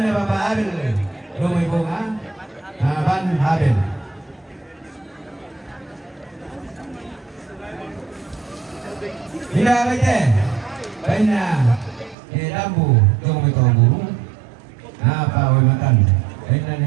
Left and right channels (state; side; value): drops out; left; at 12.2 s